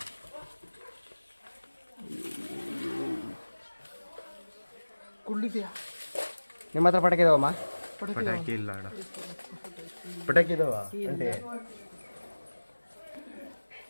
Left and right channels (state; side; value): inverted; both; correlation -1.00